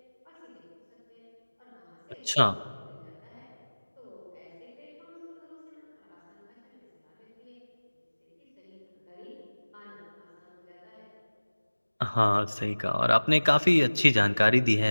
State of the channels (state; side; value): inverted; both; correlation -1.00